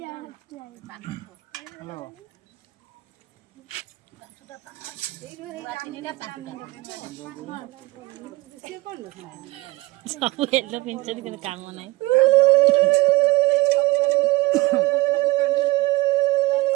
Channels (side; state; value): left; quieter; 20.3 dB